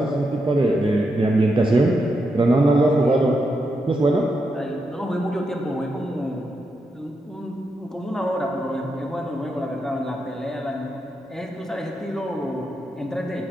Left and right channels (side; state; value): both; normal; correlation 0.84